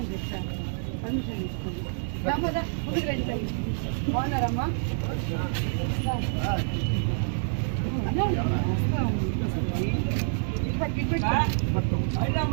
చెప్తాను పర్మిషన్ తీసుకోండి ముందుకు రండి బాగున్నారమ్మా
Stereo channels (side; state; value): left; silent; digital silence